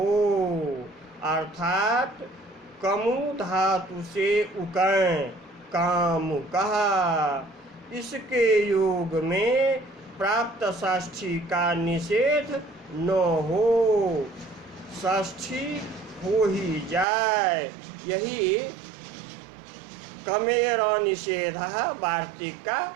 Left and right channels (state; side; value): drops out; left; at 17.1 s